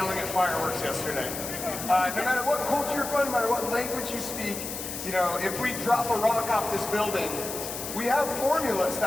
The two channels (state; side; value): noise; left; hiss, 7 dB below the sound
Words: at fireworks yesterday. No matter what culture you're from, no matter what language you speak, you know, if we drop a rock off this building, we have formulas